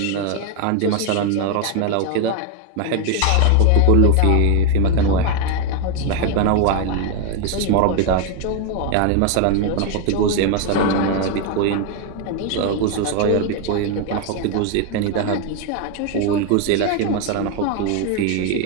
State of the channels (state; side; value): different; both; correlation 0.01